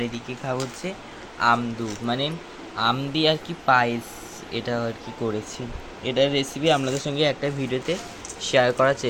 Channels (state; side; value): identical; both; correlation 1.00